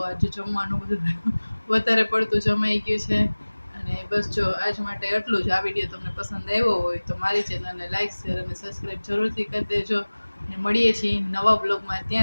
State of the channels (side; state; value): both; inverted; correlation -1.00